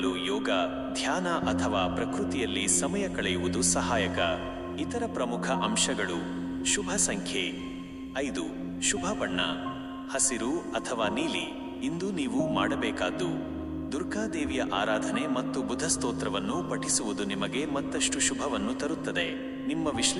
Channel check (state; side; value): identical; both; correlation 1.00